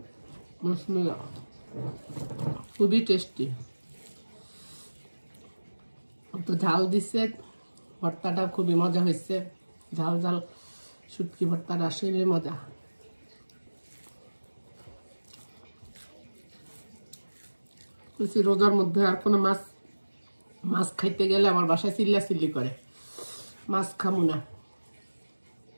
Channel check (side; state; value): both; inverted; correlation -1.00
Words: খুবই টেস্টি, তো ঝাল দিচ্ছে, ভর্তাটা খুবই মজা হয়েছে। ঝাল ঝাল শুটকি ভর্তাটা আসলে মজা। রোজার মধ্যে আর কোনো মাছ খাইতে গেলে আমার বাসায় চিল্লাচিল্লি করে, মাছ খামু না।